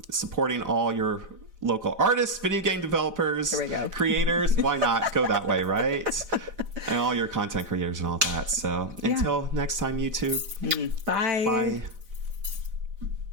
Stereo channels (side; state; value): left; late; 4.9 ms